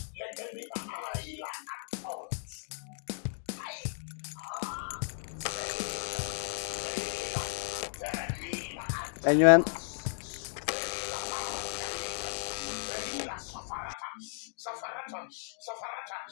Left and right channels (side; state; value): right; silent; digital silence